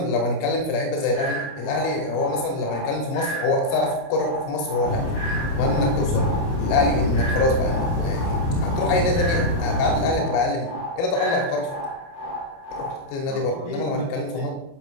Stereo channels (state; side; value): late; right; 29 ms